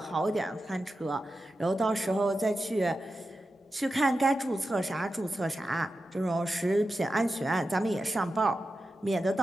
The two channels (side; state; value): both; normal; correlation 0.91